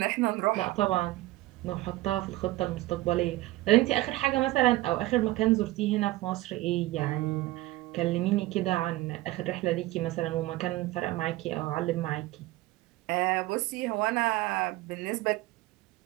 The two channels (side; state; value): left; quieter; 18.0 dB